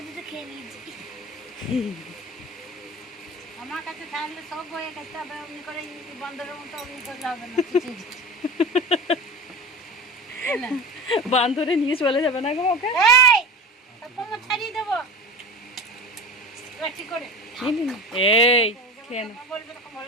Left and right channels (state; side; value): normal; both; correlation 0.32